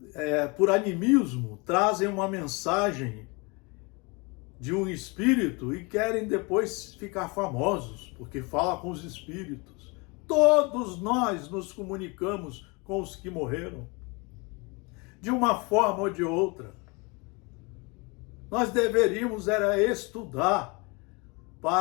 por animismo, trazem uma mensagem de um espírito e querem depois ficar famosos, porque fala com os espíritos. Todos nós nos comunicamos com os que morreram, de uma forma ou de outra. Nós deveríamos estudar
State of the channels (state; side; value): quieter; right; 28.6 dB